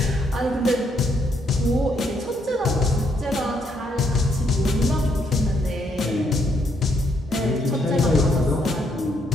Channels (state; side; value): normal; both; correlation 0.73